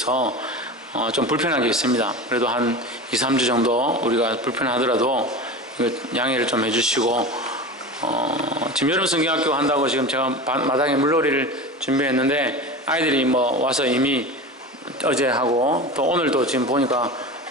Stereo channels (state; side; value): normal; both; correlation 0.29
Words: 좀 불편한 게 있습니다. 그래도 한 2, 3주 정도 우리가 불편하더라도 이거 양해를 좀 해주시고 지금 여름 성경학교 한다고 지금 제가 마당에 물놀이를 준비했는데 아이들이 뭐 와서 이미 어제 하고 또 오늘도 지금 보니까